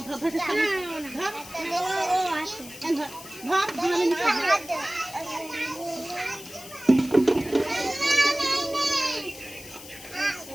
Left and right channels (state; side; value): noise; left; hiss, 15 dB below the sound